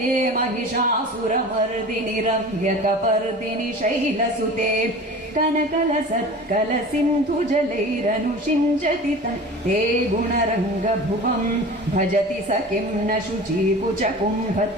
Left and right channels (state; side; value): normal; both; correlation 0.38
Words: महिषासुरमर्दिनि रम्यकपर्दिनि शैलसुते कनकल सत्कल सिन्धु जलैरनुषिञ्जति ते गुणरङ्गभुवं भजति स किं न शुचीकुच